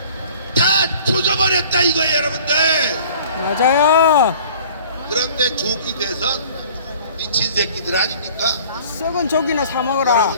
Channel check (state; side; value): inverted; both; correlation -0.49